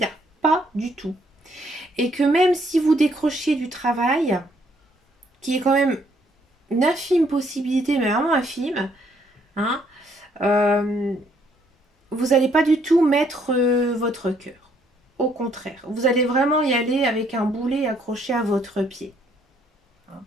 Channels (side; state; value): both; normal; correlation 0.68